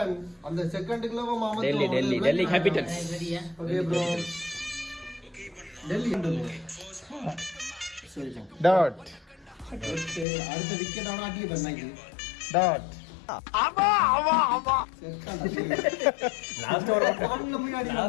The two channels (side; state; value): right; drops out; at 10.2 s